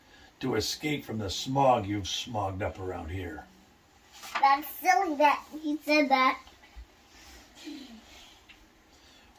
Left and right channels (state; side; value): identical; both; correlation 1.00